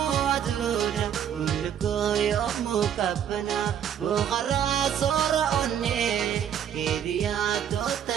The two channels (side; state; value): left; quieter; 9.2 dB